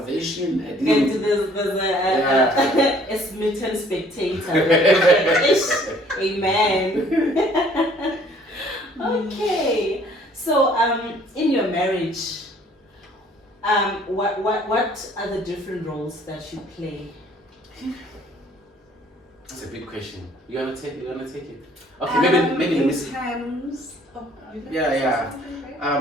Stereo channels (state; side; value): normal; both; correlation 0.58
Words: I didn't. And there's a smitten spectator. Amen. Okay. So, in your marriage, what are the different roles that you play? That's a big question. You wanna take it? Okay, maybe let me see.